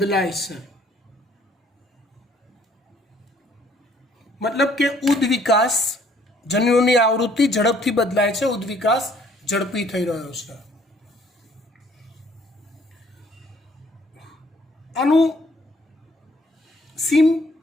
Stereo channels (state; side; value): normal; both; correlation 0.62